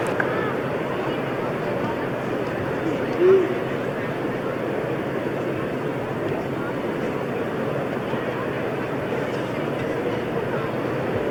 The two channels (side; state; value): both; identical; correlation 1.00